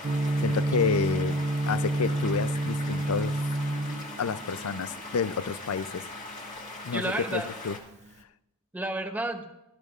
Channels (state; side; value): normal; both; correlation 0.38